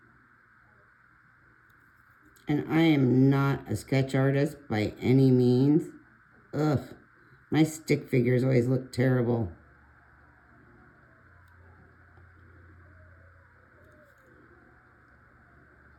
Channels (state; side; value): identical; both; correlation 1.00